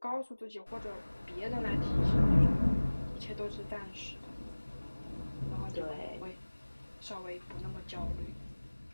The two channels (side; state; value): both; inverted; correlation -1.00